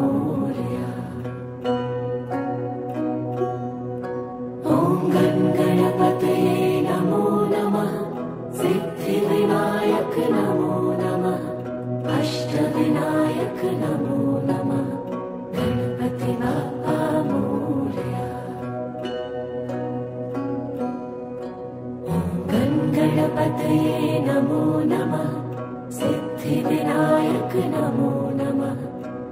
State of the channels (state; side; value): identical; both; correlation 1.00